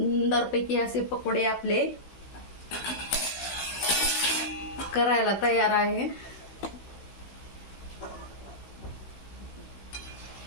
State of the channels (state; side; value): late; right; 16 ms